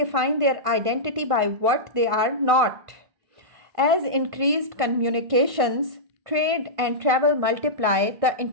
their identity by what they are not. As increased communications, trade, and travel multiply the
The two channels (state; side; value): late; left; 1.5 ms